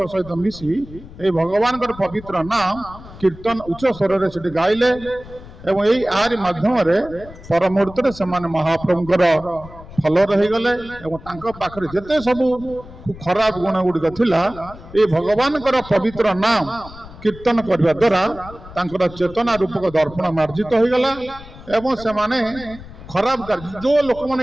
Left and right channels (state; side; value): noise; left; rumble, 17 dB below the sound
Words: ସହିତ ମିଶି এই ଭଗବାନଙ୍କର ପବିତ୍ର ନାମ କୀର୍ତ୍ତନ ଉଚ୍ଚ ସ୍ୱରରେ ସେଠି ଗାଇଲେ ଏବଂ ଏଇ ଆରି ମାଧ୍ୟମରେ ପର ମୁହୂର୍ତ୍ତରେ ସେମାନେ ମହାପ୍ରଭୁଙ୍କର ଫଲର ହେଇଗଲେ ଏବଂ ତାଙ୍କ ପାଖରେ ଯେତେ ସବୁ ଖରାପ ଗୁଣ ଗୁଡ଼ିକ ଥିଲା এই ଭଗବାନଙ୍କର ପବିତ୍ର ନାମ କୀର୍ତ୍ତନ କରିବା ଦ୍ୱାରା ତାଙ୍କର ଚେତନା ରୂପକ ଦର୍ପଣ ମାର୍ଜିତ ହୋଇଗଲା ଏବଂ ସେମାନେ ଖରାପ କାର୍ଯ୍ୟ ଯୋଉ